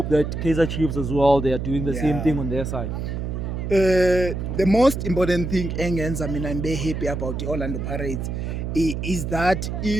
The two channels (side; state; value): right; noise; hum, 4 dB below the sound